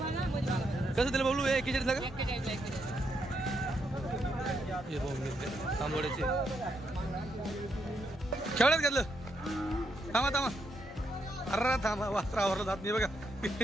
कसं दिलं बबलू? 41ला का? 41ला. हे बघ तांबोड्याचे. केवढ्यात घेतलं? थांबा थांबा. अरे थांबा वासरावर जात नाही बघा.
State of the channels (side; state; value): both; normal; correlation 0.79